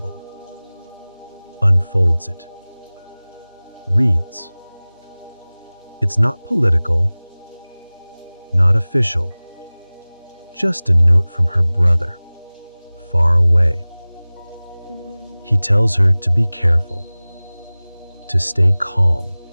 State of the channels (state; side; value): inverted; both; correlation -0.99